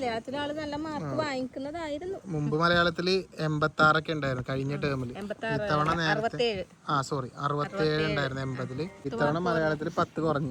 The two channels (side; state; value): both; identical; correlation 1.00